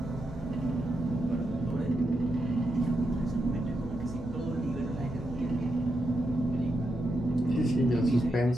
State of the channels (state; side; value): normal; both; correlation 0.84